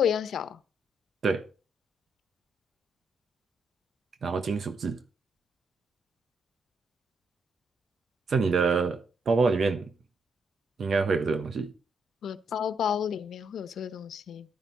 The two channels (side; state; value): both; normal; correlation 0.76